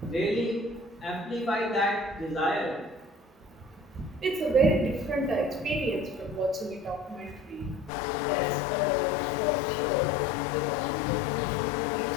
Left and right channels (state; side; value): drops out; right; at 7.9 s